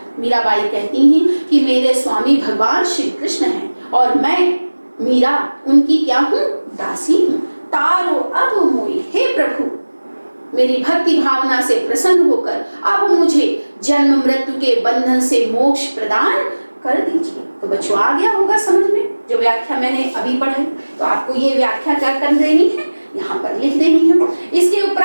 मीराबाई कहती हैं कि मेरे स्वामी भगवान श्री कृष्ण हैं और मैं मीरा उनकी क्या हूँ, दासी हूँ। तारो अब मोई, हे प्रभु मेरी भक्ति भावना से प्रसन्न होकर अब मुझे जन्म मृत्यु के बंधन से मोक्ष प्रदान कर दीजिए। तो बच्चों आ गया होगा समझ में जो व्याख्या मैंने अभी पढ़ी, तो आपको ये व्याख्या क्या कर देनी है, यहाँ पर लिख देनी है। इसके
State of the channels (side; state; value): both; inverted; correlation -1.00